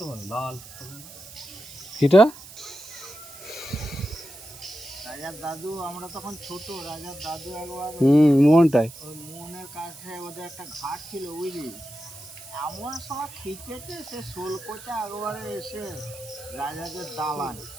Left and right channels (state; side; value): noise; right; hiss, 16 dB below the sound